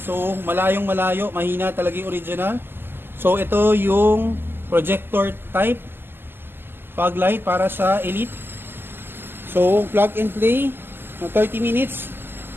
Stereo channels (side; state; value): left; late; 0.10 ms